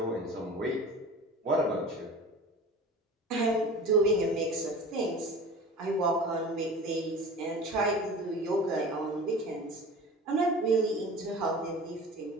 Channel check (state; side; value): normal; both; correlation 0.38